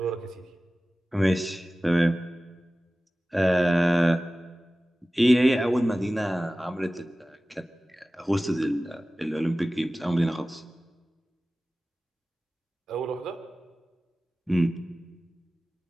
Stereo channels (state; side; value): normal; both; correlation 0.97